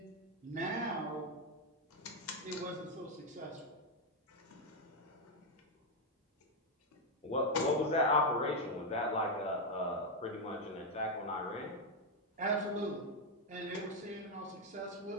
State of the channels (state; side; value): normal; both; correlation 0.03